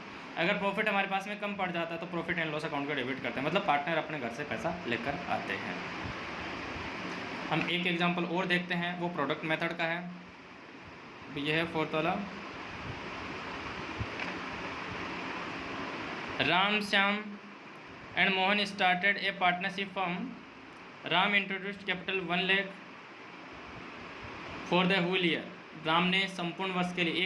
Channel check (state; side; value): identical; both; correlation 1.00